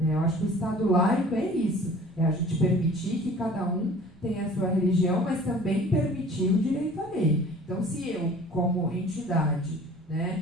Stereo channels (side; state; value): both; normal; correlation 0.47